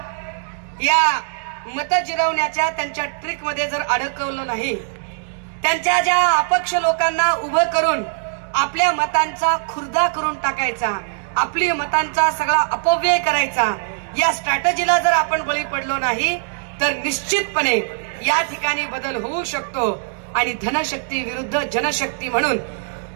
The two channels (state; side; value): silent; left; digital silence